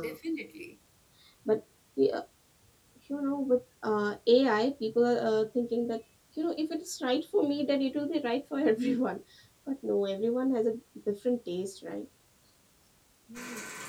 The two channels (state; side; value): identical; both; correlation 1.00